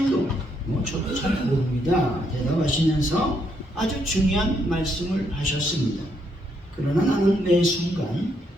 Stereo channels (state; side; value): normal; both; correlation 0.75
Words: 저도 잘 모릅니다 대답하시면서 아주 중요한 말씀을 하셨습니다. 그러나 나는 매 순간